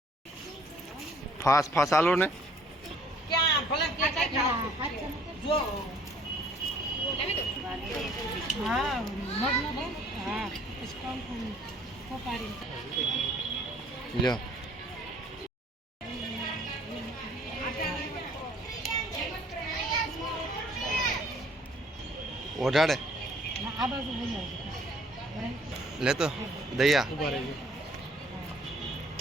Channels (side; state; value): both; normal; correlation 0.58